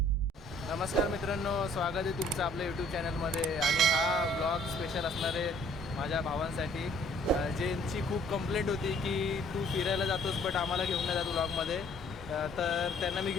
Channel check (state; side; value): normal; both; correlation 0.59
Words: नमस्कार मित्रांनो, स्वागत आहे तुमचं आपल्या यूट्यूब चॅनलमध्ये. आणि हा ब्लॉग स्पेशल असणार आहे माझ्या भावांसाठी, ज्यांची खूप कंप्लेंट होती की तू फिरायला जातोस बट आम्हाला घेऊन नाही जातो ब्लॉगमध्ये. तर त्यांना मी